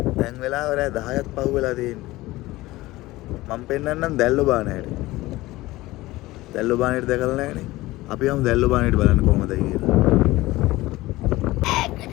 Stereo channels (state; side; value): quieter; right; 18.7 dB